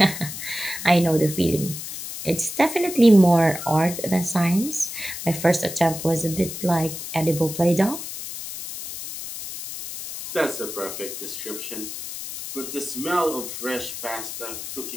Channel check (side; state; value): left; noise; hiss, 8 dB below the sound